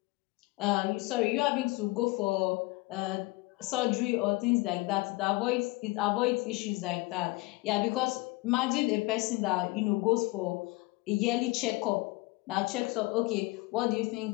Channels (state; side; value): quieter; right; 22.6 dB